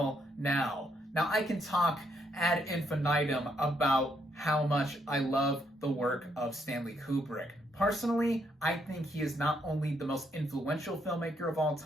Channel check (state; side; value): normal; both; correlation 0.74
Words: now. Now, I can talk ad infinitum about how much I love the work of Stanley Kubrick. Personally, I think he is not only the most influential filmmaker of all